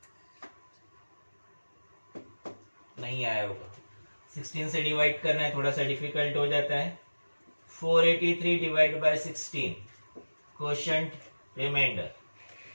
नहीं आया होगा। 16 से डिवाइड करना है, थोड़ा सा डिफिकल्ट हो जाता है। 483 divide by 16, quotient remainder.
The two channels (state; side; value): inverted; both; correlation -1.00